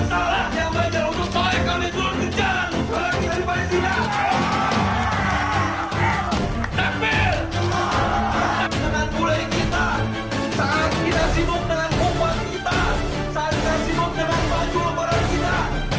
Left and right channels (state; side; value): identical; both; correlation 1.00